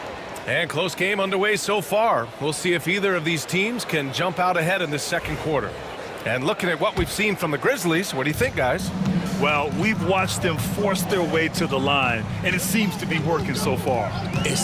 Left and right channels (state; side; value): identical; both; correlation 1.00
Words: And close game underway so far. We'll see if either of these teams can jump out ahead in this second quarter. And looking at what we've seen from the Grizzlies, what do you think, guys? Well, we've watched them force their way to the line, and it seems to be working so far.